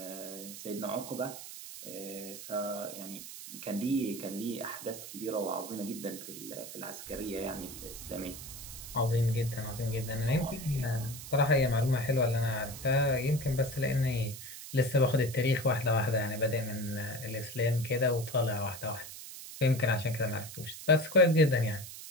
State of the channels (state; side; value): noise; right; hiss, 12 dB below the sound